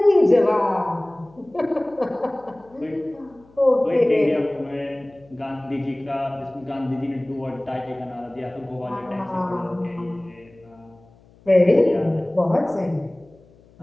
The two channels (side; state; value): left; noise; hum, 28 dB below the sound